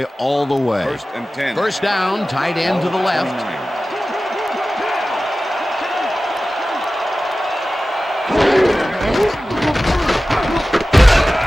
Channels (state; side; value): normal; both; correlation 0.96